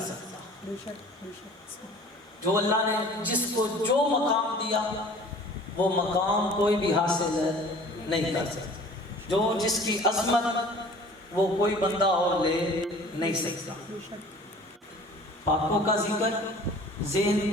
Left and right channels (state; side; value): normal; both; correlation 0.47